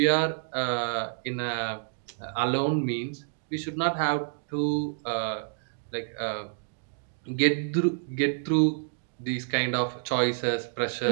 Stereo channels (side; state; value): left; silent; digital silence